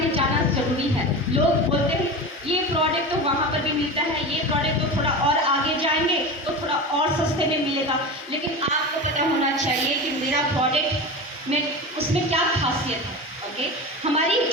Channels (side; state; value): both; normal; correlation 0.27